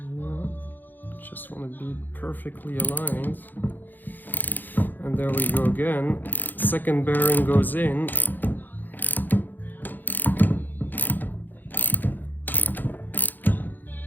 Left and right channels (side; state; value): right; late; 0.088 ms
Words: just want to be perfectly aligned. And there we go again. Second bearing goes in.